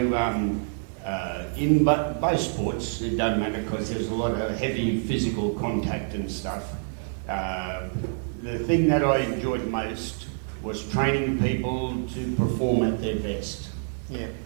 in both sports, it doesn't matter because there's a lot of heavy physical contact and stuff. The thing that I enjoyed most was training people to perform at their best. Yeah.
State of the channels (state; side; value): silent; left; digital silence